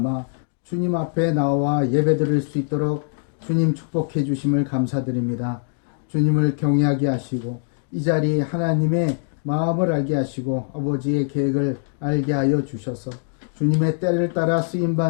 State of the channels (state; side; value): silent; right; digital silence